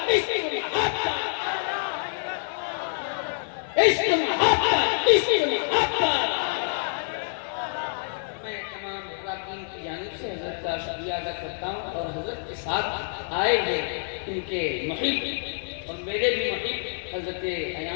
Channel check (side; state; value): right; silent; 60 dB below the other